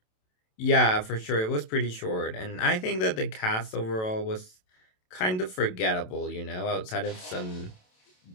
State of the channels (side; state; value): right; late; 27 ms